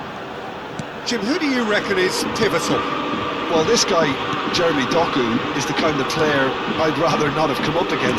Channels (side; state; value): both; identical; correlation 1.00